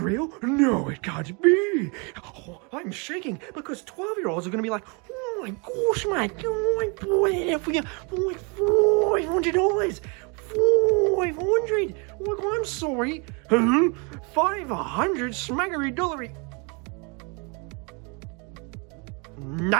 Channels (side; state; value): left; quieter; 32.6 dB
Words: No, it can't be. Oh, I'm shaking because 12-year-olds are going to be like, oh my gosh, mate, oh my boy, for you, $500. 500. Oh, I'm sorry. 500 smackery dollary.